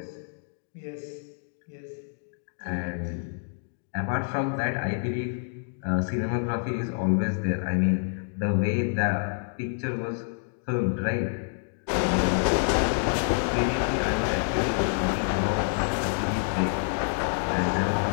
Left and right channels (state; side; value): silent; right; digital silence